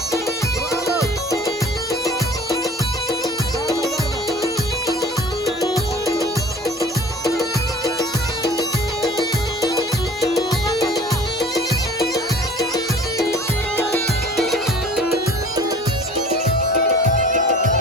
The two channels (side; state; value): both; normal; correlation 0.46